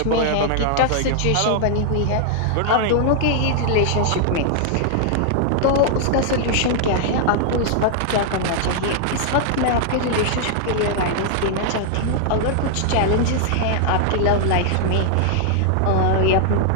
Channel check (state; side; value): different; both; correlation 0.00